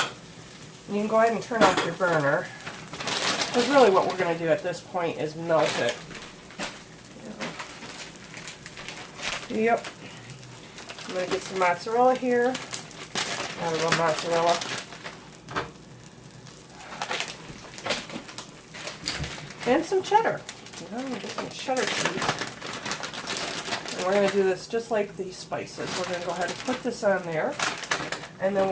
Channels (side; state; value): both; identical; correlation 1.00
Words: And you can go ahead and turn off your burner, because really what we're going to do at this point is melt it. Yep. I'm going to get some mozzarella here. Got a little mozzarella. And some cheddar. I'm going to get some cheddar cheese. And we're going to do this just like the spices. We're going to go ahead and put this on there. And then